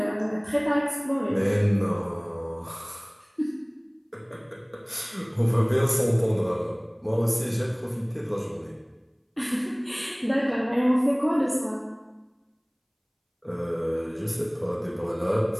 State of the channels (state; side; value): identical; both; correlation 1.00